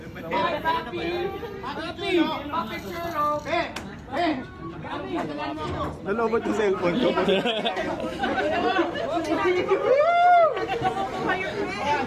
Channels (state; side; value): identical; both; correlation 1.00